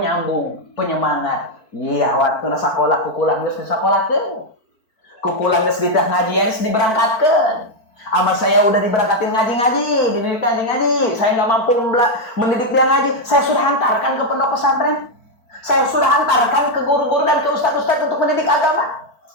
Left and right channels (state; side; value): late; right; 4.5 ms